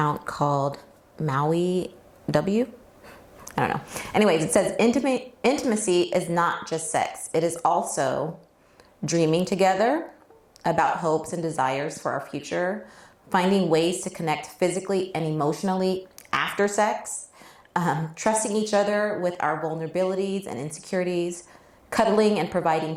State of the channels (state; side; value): identical; both; correlation 1.00